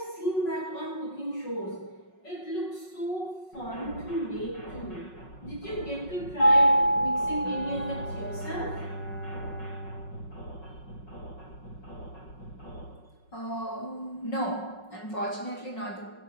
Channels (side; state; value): right; late; 5.4 ms